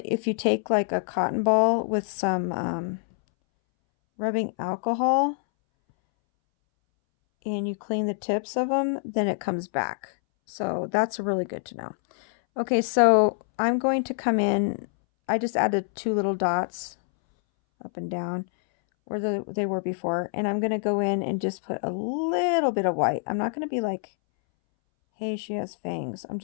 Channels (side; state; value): right; silent; 61 dB below the other